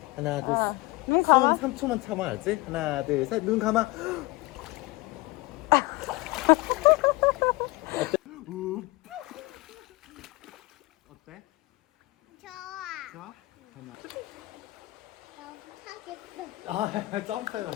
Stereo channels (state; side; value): quieter; right; 22.0 dB